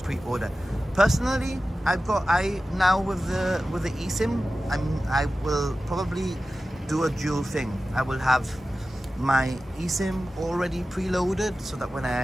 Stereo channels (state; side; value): normal; both; correlation 0.94